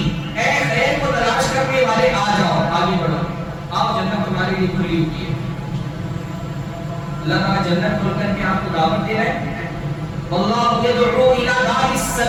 اے خیر کو تلاش کرنے والے آ جاؤ، آگے بڑھو، آپ جنت تمہارے لیے کھلی ہوئی ہے. اللہ تعالیٰ جنت کھول کر کے آپ کو دعوت دے رہے ہیں. واللہ یدعو الی دار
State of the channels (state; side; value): identical; both; correlation 1.00